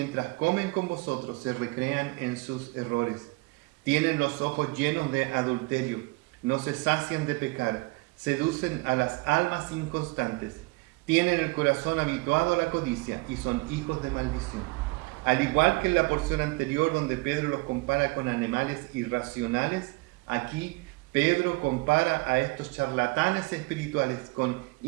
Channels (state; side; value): quieter; left; 25.5 dB